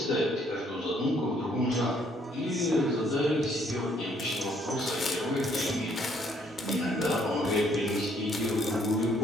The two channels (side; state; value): both; normal; correlation 0.66